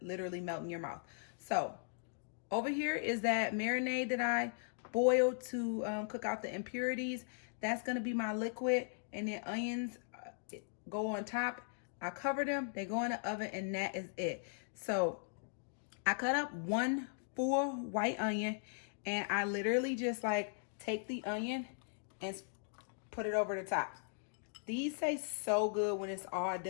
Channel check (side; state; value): right; silent; digital silence